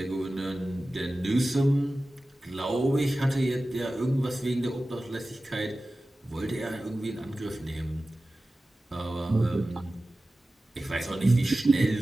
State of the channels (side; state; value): both; normal; correlation 0.96